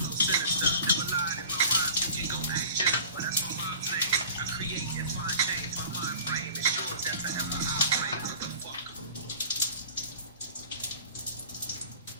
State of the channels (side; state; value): both; inverted; correlation -0.43